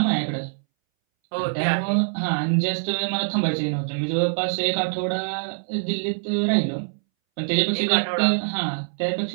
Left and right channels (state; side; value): silent; left; 62 dB below the other